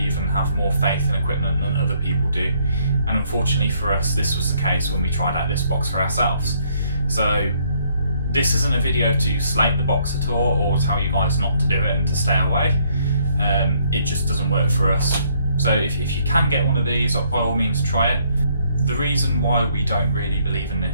and have more faith in equipment than other people do. And unfortunately for us, this was the case when we tried out this box for ourselves. So this isn't a video to slate the box at all or tell you guys not to do it and to stay away. It just doesn't work for us. So if you can get one of these, by all means try it. The reason why we don't really believe in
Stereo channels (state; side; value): inverted; both; correlation -0.67